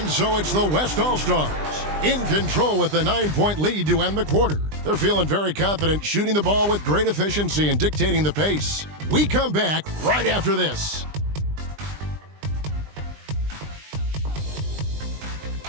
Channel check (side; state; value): left; late; 20 ms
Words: so it's the West All-Stars in control with a 9-point lead to end the quarter. They're feeling very confident, shooting the ball with great efficiency and dictating the pace. We come back right after this.